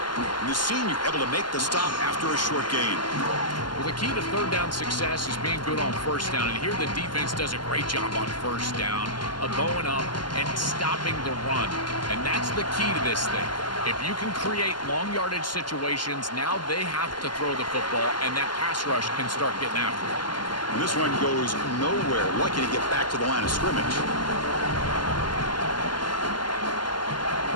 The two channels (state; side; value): late; right; 0.71 ms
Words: And the senior able to make the stop after a short gain. Well, the key to 3rd down success is being good on 1st down. And here the defense does a great job on 1st down of going up and stopping the run. And that's the key to this thing. If you can create long yardage situations, now they have to throw the football, and that pass rush can start getting after it. And this one goes nowhere. Lucky to get back to the line of scrimmage.